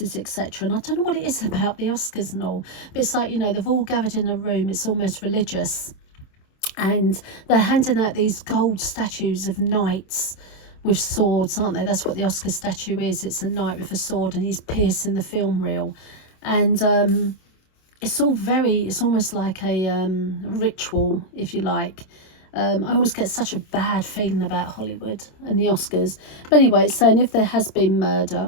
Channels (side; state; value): right; late; 27 ms